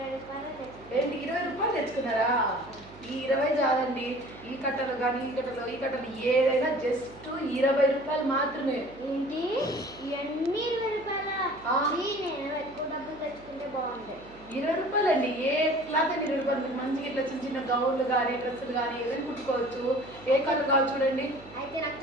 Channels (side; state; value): right; noise; hum, 21 dB below the sound